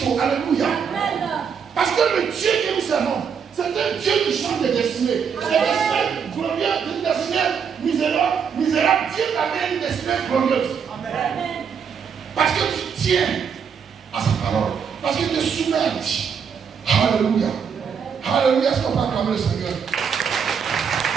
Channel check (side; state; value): left; quieter; 6.8 dB